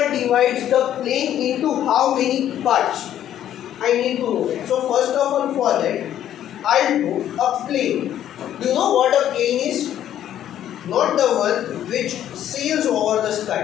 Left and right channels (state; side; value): quieter; right; 11.2 dB